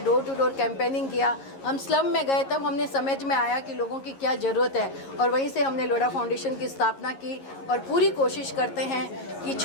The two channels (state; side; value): late; right; 11 ms